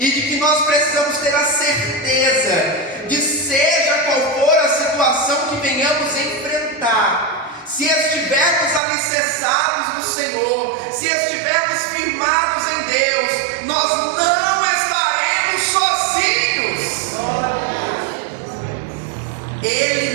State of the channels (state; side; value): drops out; left; at 8.8 s